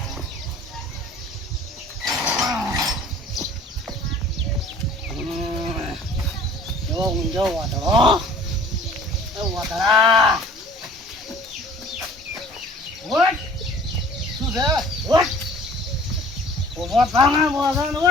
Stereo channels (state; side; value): normal; both; correlation 0.49